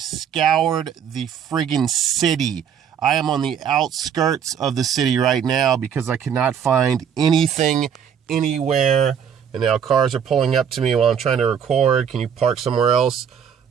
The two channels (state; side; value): quieter; left; 8.0 dB